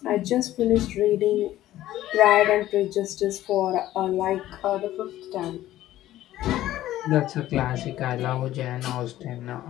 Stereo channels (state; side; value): quieter; right; 14.1 dB